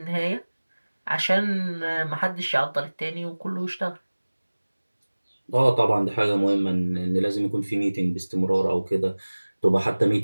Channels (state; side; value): inverted; both; correlation -1.00